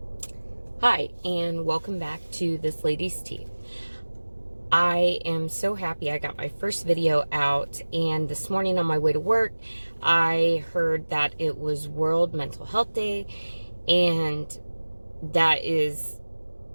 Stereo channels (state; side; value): inverted; both; correlation -1.00